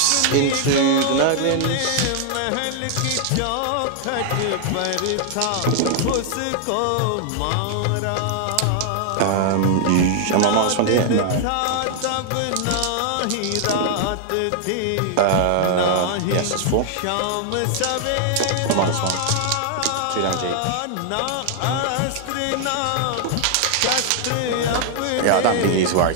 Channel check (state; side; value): different; both; correlation 0.00